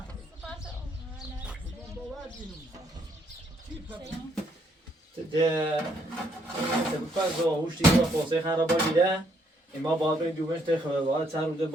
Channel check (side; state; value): both; normal; correlation 0.71